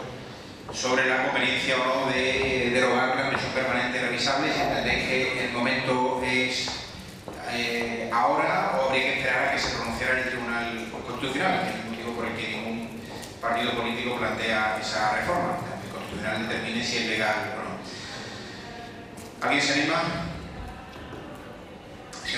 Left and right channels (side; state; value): both; identical; correlation 1.00